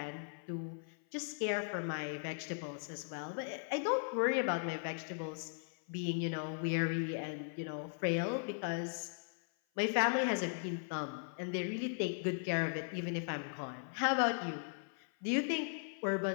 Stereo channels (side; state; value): right; silent; 52 dB below the other